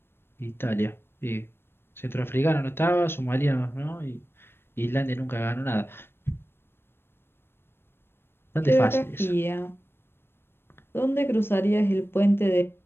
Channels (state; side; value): late; right; 0.11 ms